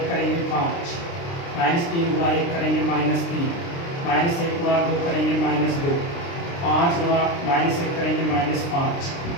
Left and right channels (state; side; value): late; right; 29 ms